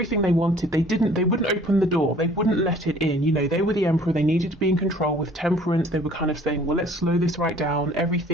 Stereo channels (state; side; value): normal; both; correlation 0.53